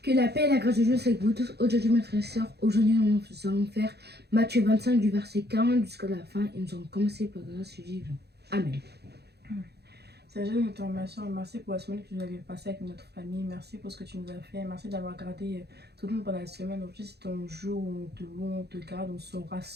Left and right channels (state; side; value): late; left; 0.48 ms